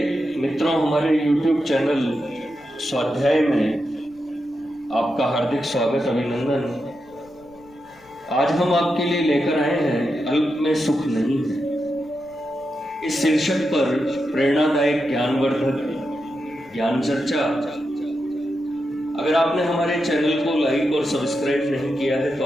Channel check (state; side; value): noise; left; rumble, 29 dB below the sound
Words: मित्रों, हमारे YouTube चैनल स्वाध्याय में आपका हार्दिक स्वागत, अभिनंदन। आज हम आपके लिए लेकर आए हैं अल्प में सुख नहीं है। इस शीर्षक पर प्रेरणादायक ज्ञानवर्धक ज्ञान चर्चा। अगर आपने हमारे चैनल को लाइक और सब्सक्राइब नहीं किया है तो